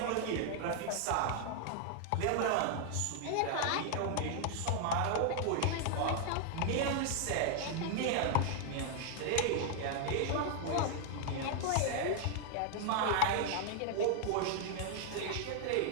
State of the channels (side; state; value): both; different; correlation 0.00